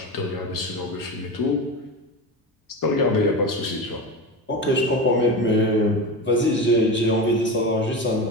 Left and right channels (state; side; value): normal; both; correlation 0.24